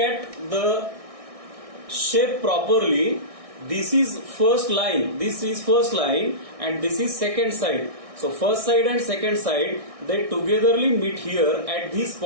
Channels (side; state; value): left; late; 1.6 ms